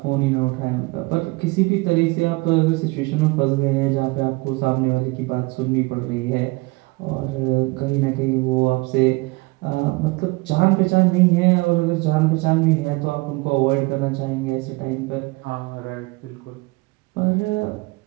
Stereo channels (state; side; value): quieter; left; 24.7 dB